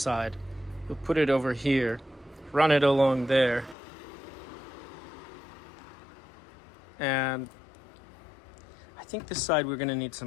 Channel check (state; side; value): drops out; right; at 3.8 s